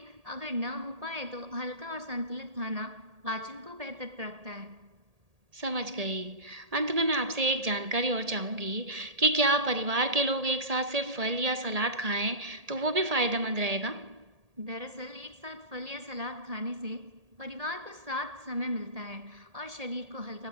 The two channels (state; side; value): late; left; 1.8 ms